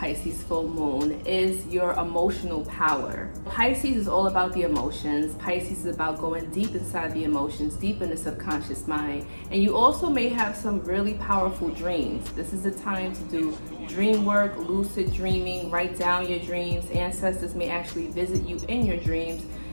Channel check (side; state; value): both; inverted; correlation -1.00